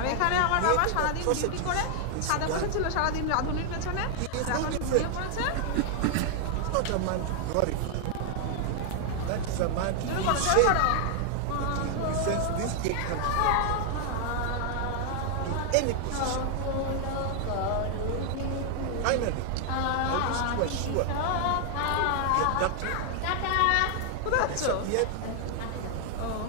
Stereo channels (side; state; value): both; different; correlation 0.00